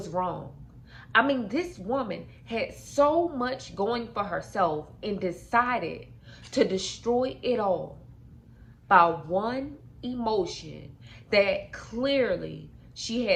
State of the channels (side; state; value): both; identical; correlation 1.00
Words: wrong. I mean, this woman had so much going for herself and decided to destroy it all by one emotion that clearly she